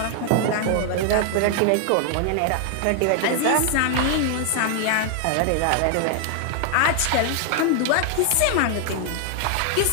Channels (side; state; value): both; different; correlation 0.00